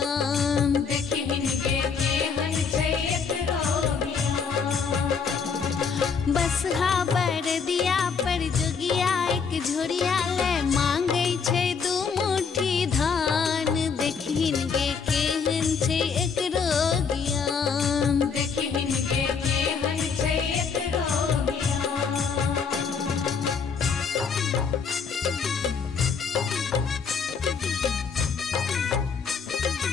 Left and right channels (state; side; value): quieter; right; 5.8 dB